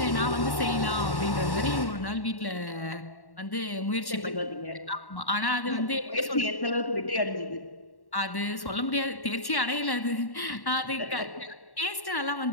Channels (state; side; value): late; right; 1.1 ms